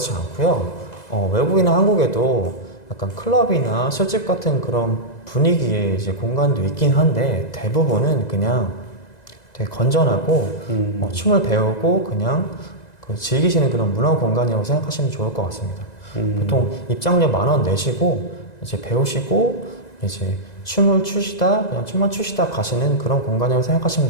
않고요. 외국이나 한국에도 약간 클럽이나 술집 같은 그런 분위기의 이제 공간도 있긴 한데, 대부분은 그냥 되게 건전하고 춤을 배우고 그냥 즐기시는 그런 문화 공간이라고 생각하시면 좋을 것 같습니다. 보통 입장료 10,000원 내시고 이제 배우시고 이제 춤을 추시다 그냥 춤만 추시다 가시는 그런 공간이라고 생각하시면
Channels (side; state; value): right; late; 1.9 ms